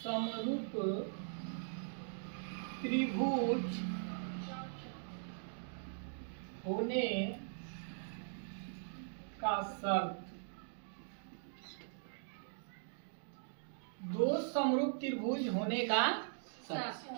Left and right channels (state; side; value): silent; left; digital silence